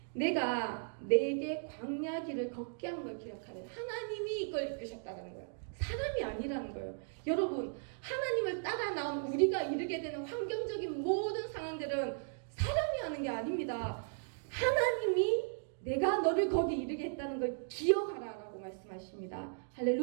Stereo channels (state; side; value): silent; left; digital silence